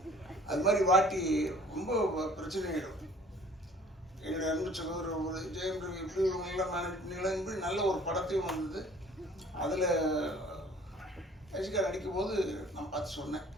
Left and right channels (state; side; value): normal; both; correlation 0.52